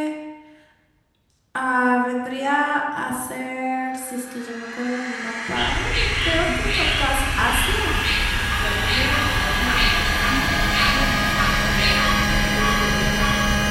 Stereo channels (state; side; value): identical; both; correlation 1.00